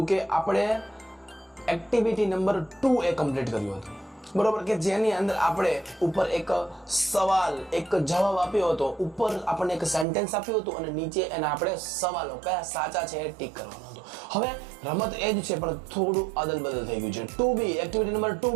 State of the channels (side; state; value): left; drops out; at 10.1 s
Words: કે આપણે એક્ટિવિટી નંબર 2 એ કમ્પ્લીટ કર્યું હતું બરોબર કે જેની અંદર આપણે ઉપર એક સવાલ એક જવાબ આપ્યો હતો ઉપર આપણને એક સેન્ટેન્સ આપ્યું હતું અને નીચે એના આપણે સવાલો કયા સાચા છે એ ટીક કરવાનો હતો હવે રમત એ જ છે પણ થોડું અદલ બદલ થઈ ગયું છે 2B એક્ટિવિટી નંબર